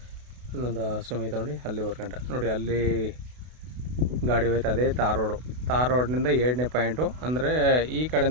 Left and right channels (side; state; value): left; late; 32 ms